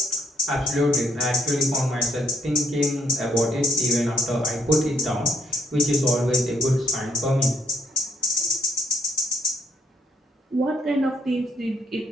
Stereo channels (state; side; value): normal; both; correlation 0.71